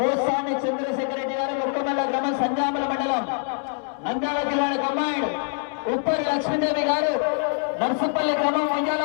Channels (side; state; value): right; silent; 62 dB below the other